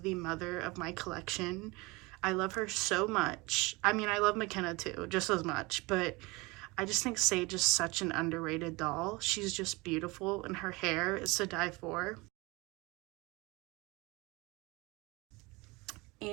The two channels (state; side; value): quieter; left; 24.4 dB